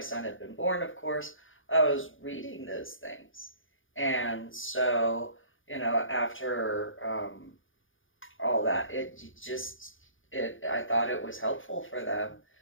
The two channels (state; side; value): late; right; 0.58 ms